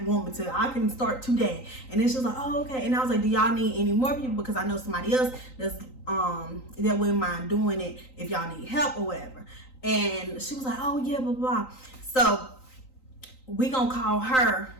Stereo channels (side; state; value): right; late; 3.9 ms